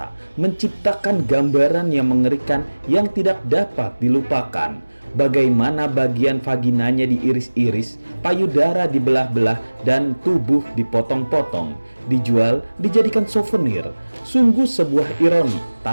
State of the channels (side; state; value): both; inverted; correlation -1.00